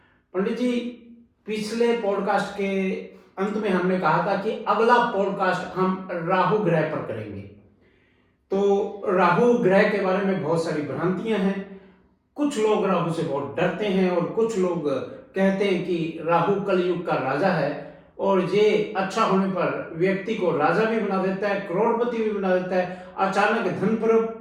पंडित जी, पिछले पॉडकास्ट के अंत में हमने कहा था कि अगला पॉडकास्ट हम राहु ग्रह पर करेंगे। तो राहु ग्रह के बारे में बहुत सारी भ्रांतियां हैं। कुछ लोग राहु से बहुत डरते हैं और कुछ लोग कहते हैं कि राहु कलयुग का राजा है और ये अच्छा होने पर व्यक्ति को राजा भी बना देता है, करोड़पति भी बना देता है, अचानक धन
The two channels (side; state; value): both; identical; correlation 1.00